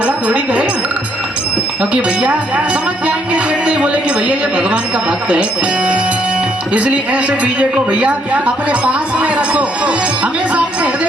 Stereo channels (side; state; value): both; normal; correlation 0.70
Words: थोड़ी करेगा। क्योंकि भैया समझ जाएंगे, देखते ही बोले कि भैया ये भगवान का भक्त है। इसलिए ऐसे बीजे को भैया अपने पास में रखो, हमेशा अपने